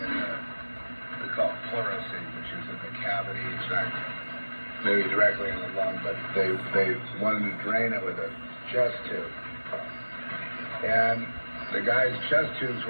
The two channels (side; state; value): both; inverted; correlation -1.00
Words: call it pleurisy, which is in the cavity. It's not maybe directly in the lung, but they wanted to drain it with a chest tube. And the guy's chest tubes